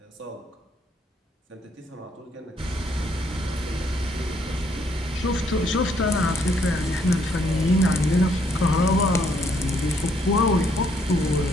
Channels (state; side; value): normal; both; correlation 0.70